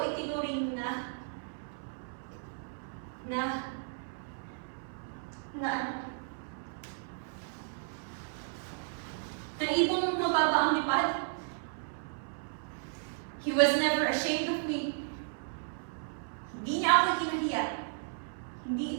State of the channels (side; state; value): left; silent; 55 dB below the other